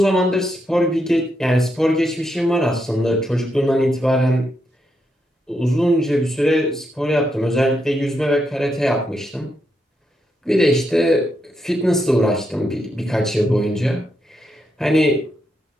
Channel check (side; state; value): both; normal; correlation 0.81